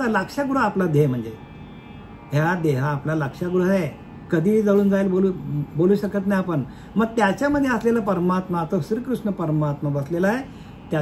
लाक्षागृह आपला देह म्हणजे ह्या देहा आपला लाक्षागृह आहे. कधी जळून जाईल बोलू शकत नाही आपण. मग त्याच्यामध्ये असलेला परमात्मा, तो श्रीकृष्ण परमात्मा बसलेला आहे,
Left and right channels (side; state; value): both; identical; correlation 1.00